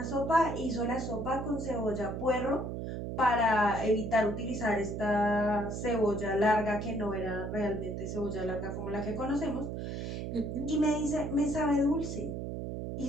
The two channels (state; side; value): noise; right; hum, 5 dB below the sound